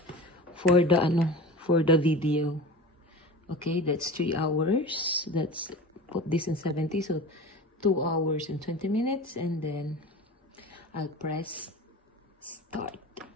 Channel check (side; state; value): both; normal; correlation 0.34